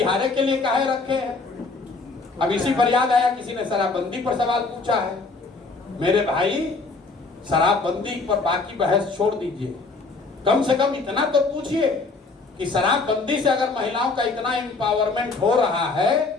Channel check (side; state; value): right; quieter; 3.9 dB